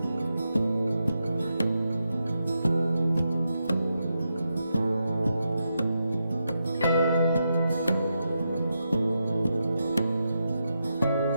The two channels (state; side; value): inverted; both; correlation -0.85